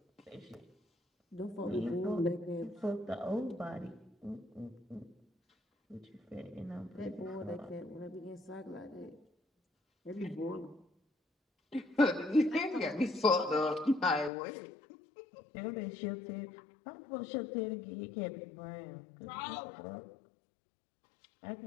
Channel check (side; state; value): right; drops out; at 14.3 s